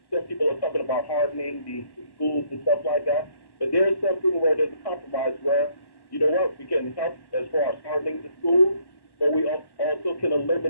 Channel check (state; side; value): late; right; 1.1 ms